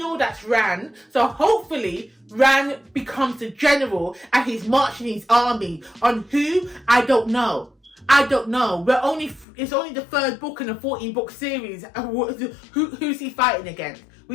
that's Ran. So hopefully, Ran becomes the general and he's marching his army on who? I don't know. I don't know. It's only the 3rd book in a 14-book series. Who's he fighting against?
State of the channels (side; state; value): right; drops out; at 9.5 s